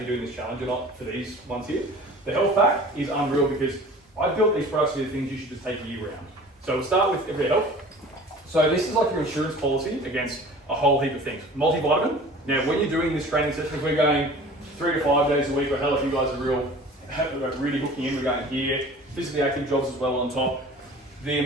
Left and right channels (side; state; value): both; normal; correlation 0.43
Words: doing this challenge or not for these ones here. The health pack is unreal because I built these products to be the things you should just take year round. So we'll start with Everyday Health. So this is like your insurance policy against a whole heap of things. Multivitamin. Now when you're doing this training session, if we're going 3 to 5 days a week, or hell if you guys are really hooking in, we're going here, physically active jobs as well on top. The